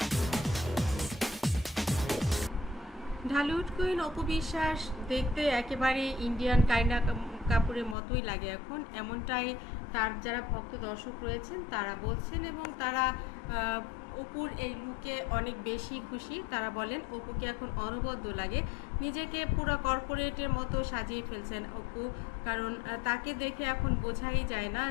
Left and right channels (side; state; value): right; drops out; at 8.0 s